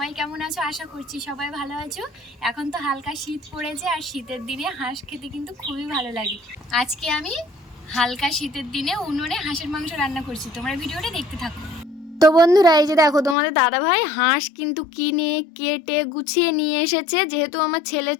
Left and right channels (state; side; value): drops out; right; at 13.4 s